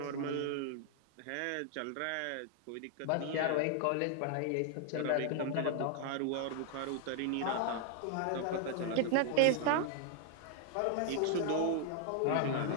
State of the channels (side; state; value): both; different; correlation 0.00